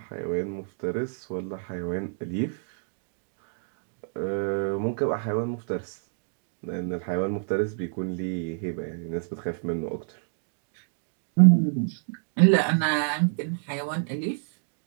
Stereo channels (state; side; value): silent; left; digital silence